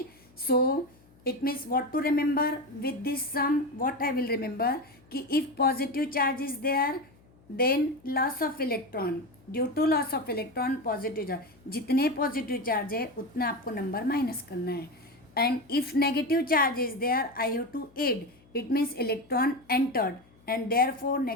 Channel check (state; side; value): noise; left; hum, 29 dB below the sound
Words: so it means what to remember with this sum. What I will remember कि if positive charge is there, then loss of electron. Due to loss of electron, positive charge. जितने positive charge है उतना आपको number minus करना है. And if negative charge is there, I have to add. It means electron entered, and therefore